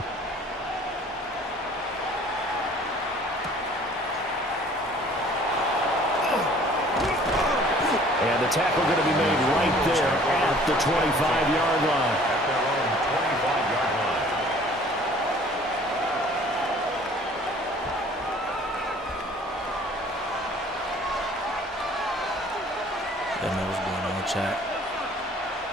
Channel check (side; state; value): both; normal; correlation 0.52